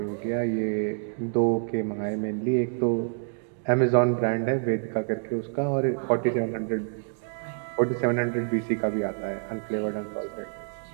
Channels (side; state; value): left; silent; 60 dB below the other